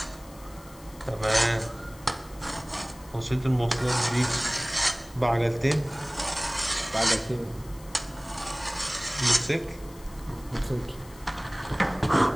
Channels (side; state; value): left; noise; hiss, 22 dB below the sound